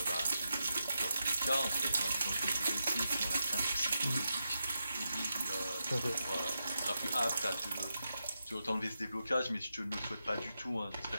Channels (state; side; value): inverted; both; correlation -0.87